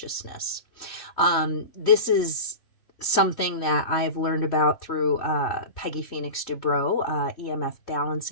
This is something that I've learned about through Peggy Phoenix Dubrow, EMF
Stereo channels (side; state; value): right; late; 3.1 ms